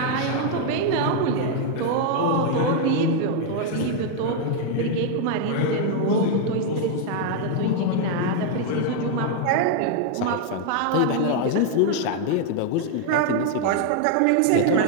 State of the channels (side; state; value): both; different; correlation 0.00